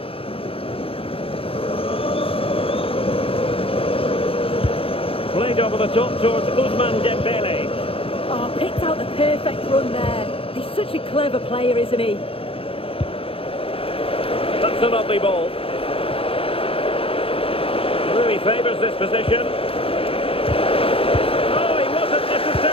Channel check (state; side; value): late; right; 0.27 ms